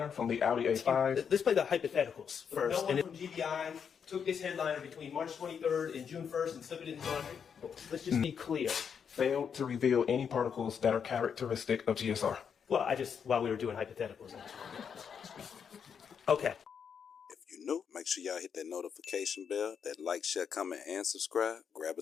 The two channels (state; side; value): quieter; right; 7.1 dB